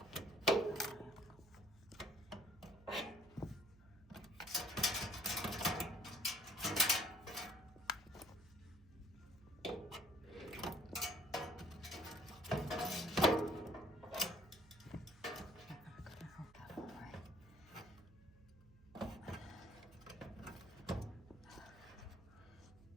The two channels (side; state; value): right; noise; hum, 23 dB below the sound